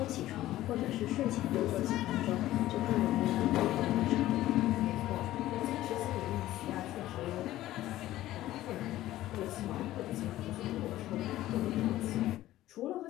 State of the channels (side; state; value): right; quieter; 14.9 dB